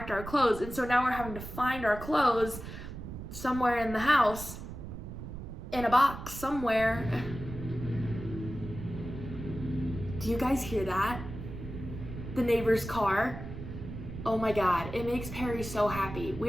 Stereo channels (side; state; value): right; noise; rumble, 10 dB below the sound